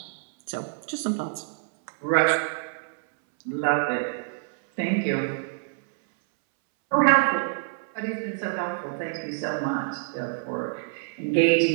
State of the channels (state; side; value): silent; left; 61 dB below the other